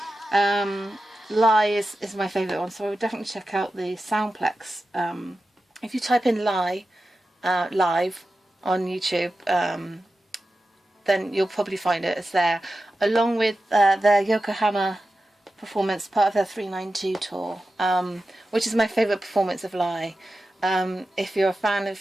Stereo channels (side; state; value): both; normal; correlation 0.92